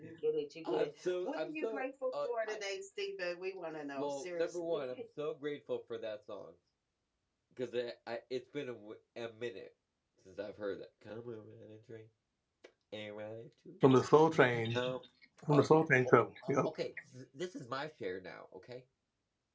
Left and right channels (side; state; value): both; identical; correlation 1.00